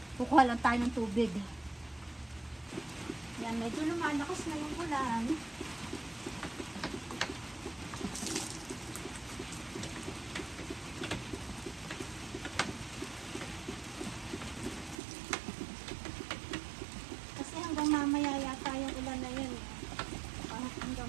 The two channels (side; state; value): left; drops out; at 15.0 s